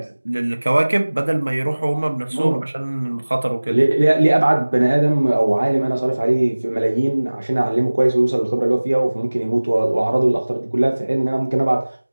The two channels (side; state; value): both; inverted; correlation -1.00